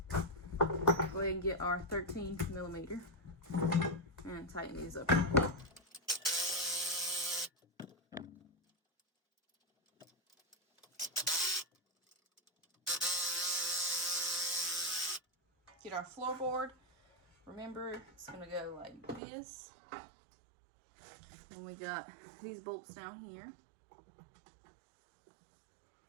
Go ahead and get our 13 millimeter and tighten these up. Get our floorboard. Remember, it's going to go like this. And we got these bolts down here.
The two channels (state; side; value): drops out; left; at 19.2 s